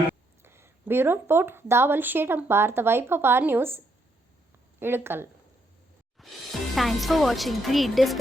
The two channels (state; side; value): normal; both; correlation 0.75